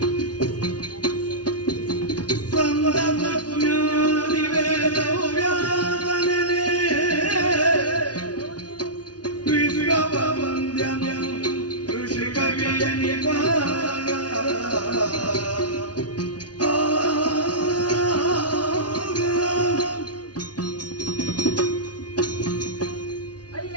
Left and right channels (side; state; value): right; late; 0.69 ms